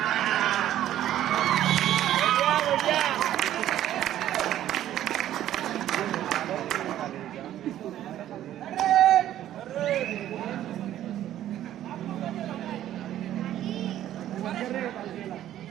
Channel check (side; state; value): left; quieter; 12.3 dB